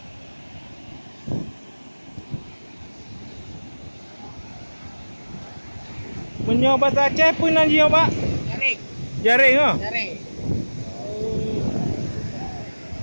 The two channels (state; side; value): inverted; both; correlation -1.00